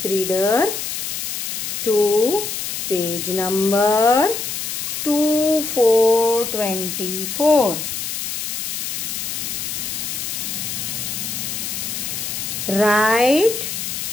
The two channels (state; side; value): noise; left; hiss, 4 dB below the sound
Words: reader to page number 2424. Write